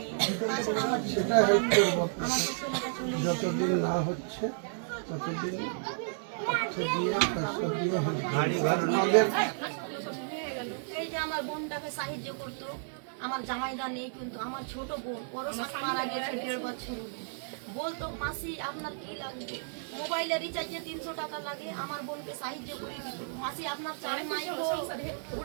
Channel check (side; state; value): left; silent; 56 dB below the other